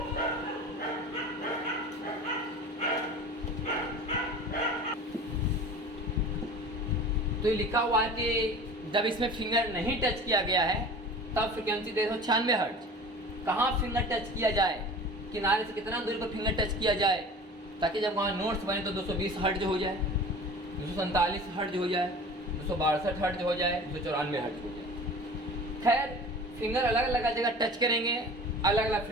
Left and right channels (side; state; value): both; normal; correlation 0.39